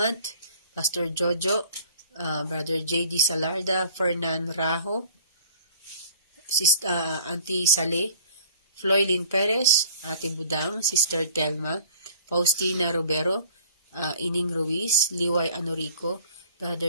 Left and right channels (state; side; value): inverted; both; correlation -0.51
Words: Pastor Jojo, Brother J.D. Salarda, Fernan Rajo, Sister Auntie Sale, Floylin Perez, Ate Budang, Sister Telma, Faustina Robero, Ining Ruiz, Liway Anorico,